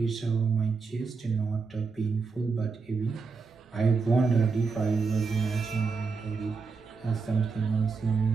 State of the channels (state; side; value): quieter; left; 4.7 dB